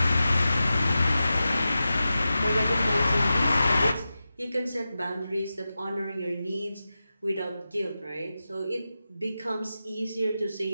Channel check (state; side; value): inverted; both; correlation -0.93